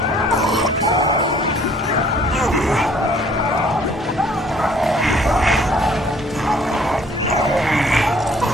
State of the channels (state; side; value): normal; both; correlation 0.58